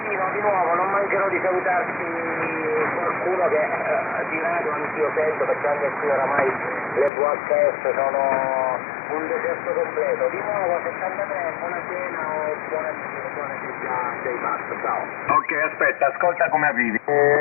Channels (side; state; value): right; drops out; at 7.1 s